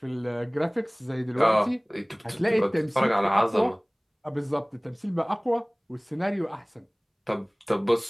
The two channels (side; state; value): both; identical; correlation 1.00